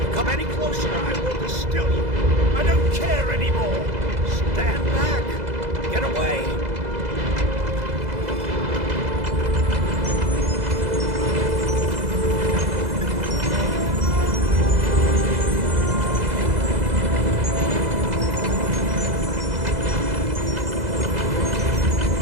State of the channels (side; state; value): left; late; 2.0 ms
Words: you come any closer, I will distill you. I don't care anymore. Stand back. Get away.